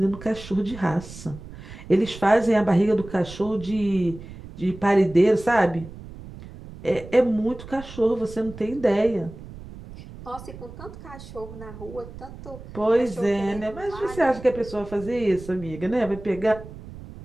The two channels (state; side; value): noise; right; rumble, 15 dB below the sound